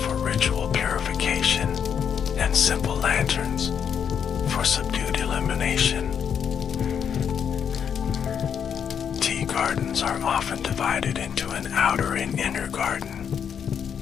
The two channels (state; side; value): quieter; right; 7.8 dB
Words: ritual purification, and simple lanterns for subdued illumination. Tea gardens are often divided into an outer and inner garden,